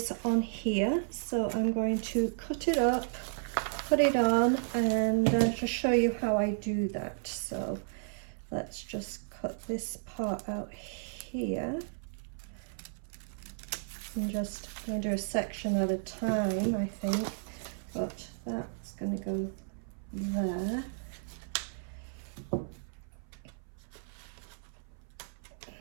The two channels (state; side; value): silent; left; 55 dB below the other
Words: on here, so I'm going to cut it up, put it on, and just show you how I do that. So let's just cut this part out here, and just going to do a section at a time, I think, but that's going to go there.